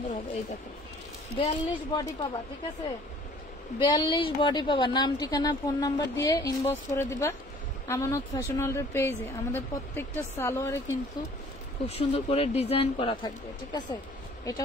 হবে। এই দেখো, 42 বডি পাবা। ঠিক আছে, 42 বডি পাবা। নাম ঠিকানা ফোন নাম্বার দিয়ে ইনবক্স করে দিবা আমানত ফ্যাশন ওয়ার্ল্ডের পেজে। আমাদের প্রত্যেকটা সালোয়ারে কিন্তু খুব সুন্দর করে ডিজাইন করা থাকবে। ঠিক আছে, এটা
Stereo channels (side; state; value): both; normal; correlation 0.53